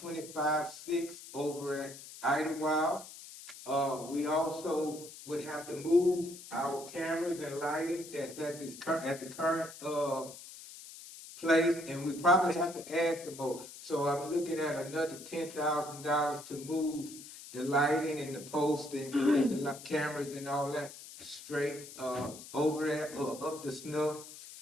$25,600 over at Idlewild. We also would have to move our cameras and lighting that's at the current place, and we probably have to add some more. So I'm looking at another $10,000 to move the lighting and the post and the cameras and all that straight over there up the snuff.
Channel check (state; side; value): noise; left; hiss, 15 dB below the sound